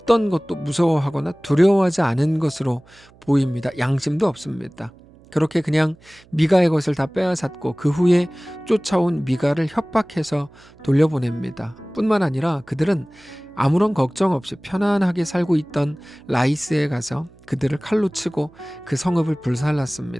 것도 무서워하거나 두려워하지 않은 것으로 보입니다. 양심도 없습니다. 그렇게 그냥 미가의 것을 다 빼앗았고 그 후에 쫓아온 미가를 협박해서 돌려보냅니다. 뿐만 아니라 그들은 아무런 걱정 없이 편안하게 살고 있던 라이스에 가서 그들을 칼로 치고 그 성읍을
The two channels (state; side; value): noise; right; hum, 27 dB below the sound